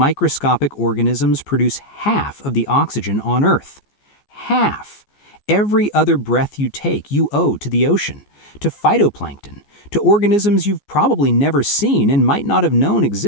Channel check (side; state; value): right; late; 14 ms